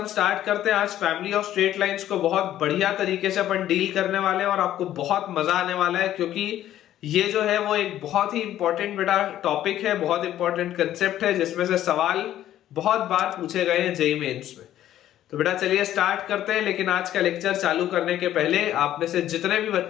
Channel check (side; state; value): right; quieter; 12.4 dB